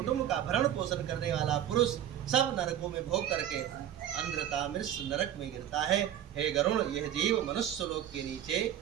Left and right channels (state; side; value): quieter; left; 10.9 dB